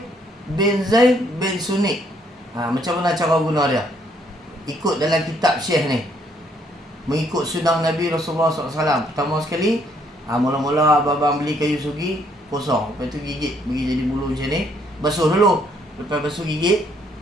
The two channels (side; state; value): both; normal; correlation 0.68